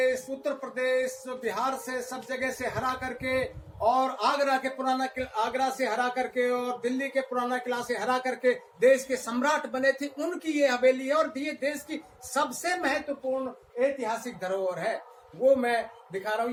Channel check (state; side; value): identical; both; correlation 1.00